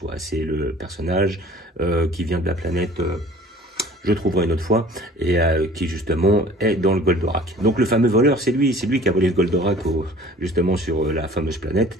C'est le personnage qui vient de la planète, je trouverai une autre fois, et qui justement est dans le Goldorak. Donc le fameux voleur, c'est lui qui a volé le Goldorak justement sur la fameuse planète,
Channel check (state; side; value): normal; both; correlation 0.48